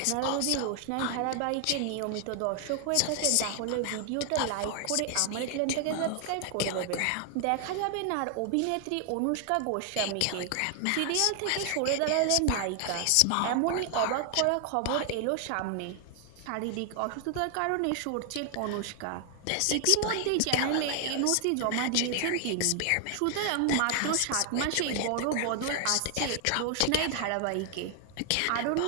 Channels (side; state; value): both; different; correlation 0.00